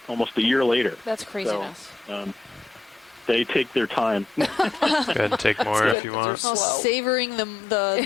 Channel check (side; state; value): right; drops out; at 6.0 s